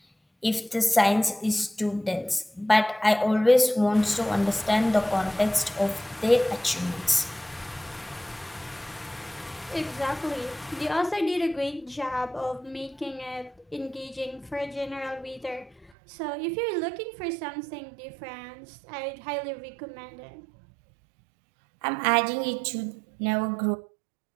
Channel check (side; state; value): left; drops out; at 15.9 s